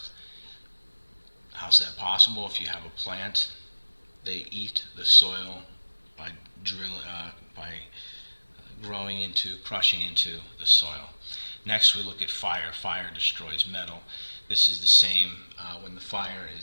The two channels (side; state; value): both; inverted; correlation -1.00